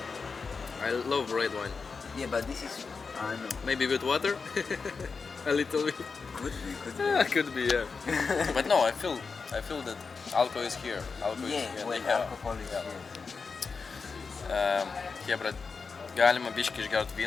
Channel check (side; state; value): right; quieter; 4.9 dB